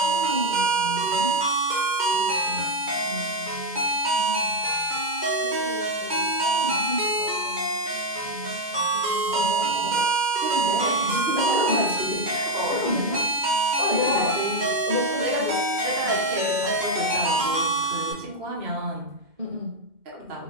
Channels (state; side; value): late; left; 2.1 ms